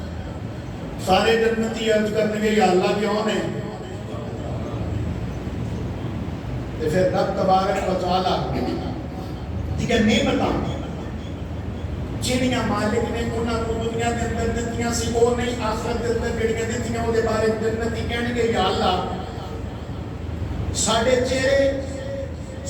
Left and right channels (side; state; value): both; identical; correlation 1.00